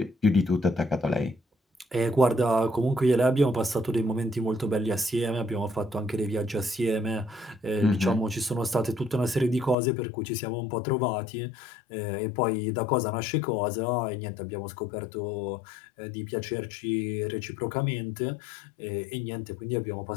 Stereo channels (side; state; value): right; drops out; at 9.8 s